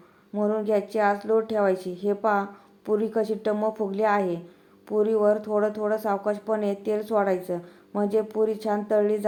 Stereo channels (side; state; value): both; identical; correlation 1.00